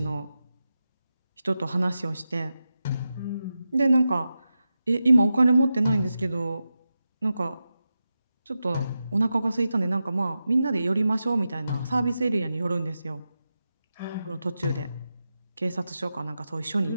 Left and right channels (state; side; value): inverted; both; correlation -0.90